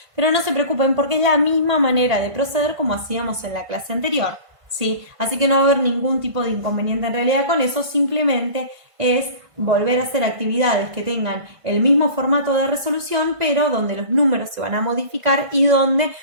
Pero no se preocupen porque es la misma manera de proceder como hacíamos en la clase anterior, ¿sí? Así que no va a haber ningún tipo de inconveniente en realidad con eso, simplemente es volver a hacer actividades que tengan el mismo formato de resolución, pero donde los números se van a modificar y donde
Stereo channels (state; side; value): late; left; 1.5 ms